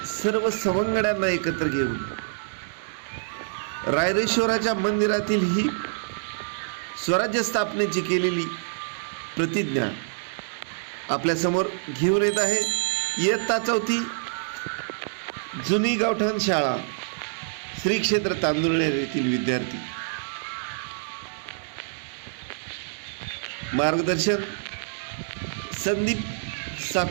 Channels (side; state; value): left; silent; digital silence